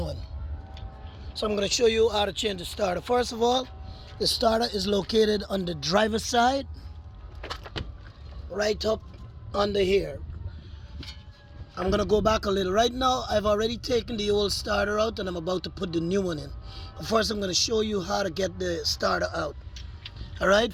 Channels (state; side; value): identical; both; correlation 1.00